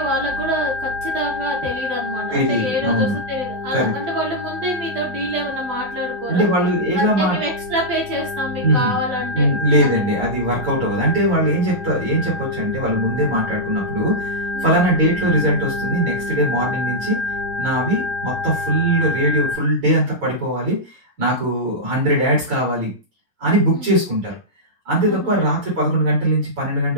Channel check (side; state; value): left; late; 11 ms